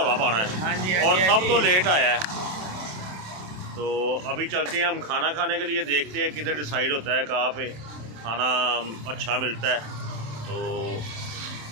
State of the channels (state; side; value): late; left; 27 ms